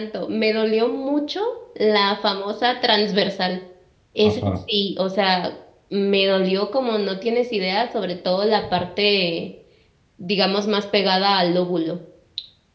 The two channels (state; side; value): identical; both; correlation 1.00